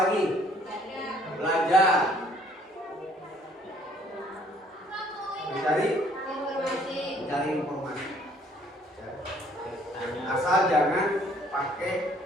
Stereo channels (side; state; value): both; normal; correlation 0.61